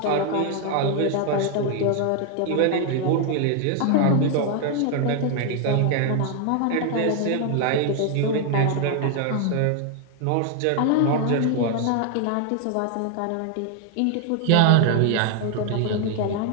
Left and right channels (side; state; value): both; different; correlation 0.00